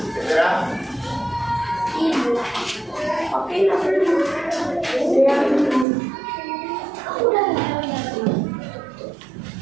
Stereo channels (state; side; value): drops out; left; at 5.9 s